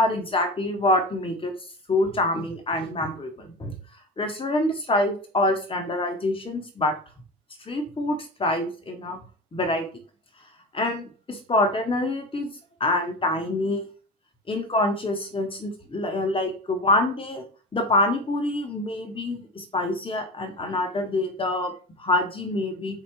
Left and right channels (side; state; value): both; normal; correlation 0.29